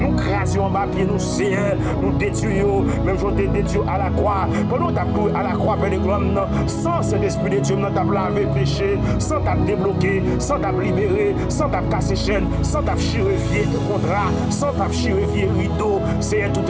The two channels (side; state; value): both; identical; correlation 1.00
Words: crasions en bas pied, nous nous détruisons, même si on te détruit à la croix, pendant que tu as à la croix, Père de gloire, sans cet esprit de Dieu, tu as lavé péché, sans t'as débloqué, sans t'as libéré, sans t'as cassé chaîne, sans t'as chirurgié contrat, sans t'as chirurgié rideau, c'est tout